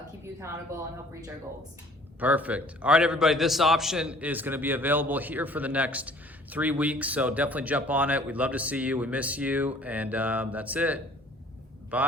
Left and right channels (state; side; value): normal; both; correlation 0.53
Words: keep you accountable and help reach our goals. Perfect. All right, everybody, this option is going to be available here for the next 3 weeks, so definitely jump on it. We'd love to see you. We miss you, and that's it.